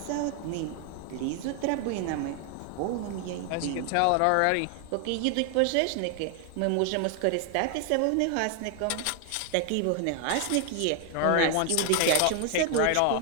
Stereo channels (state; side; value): different; both; correlation 0.00